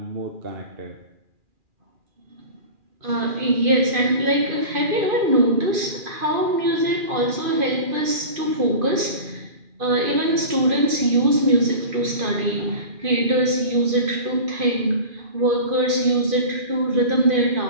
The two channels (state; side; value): late; left; 2.4 ms